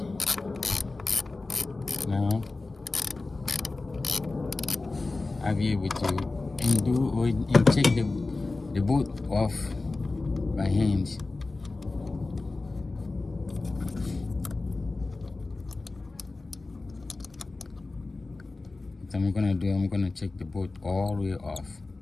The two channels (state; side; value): quieter; right; 3.4 dB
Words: Now I'll be able to undo and take the bolt off by hand. What I'm gonna do, I'm gonna take the bolt all the way off